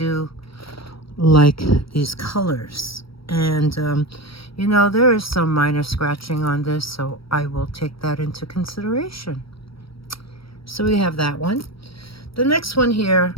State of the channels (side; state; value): right; late; 0.75 ms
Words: like these colors. And you know, there is some minor scratching on this, so I will take that into consideration. So we have that one. The next one here,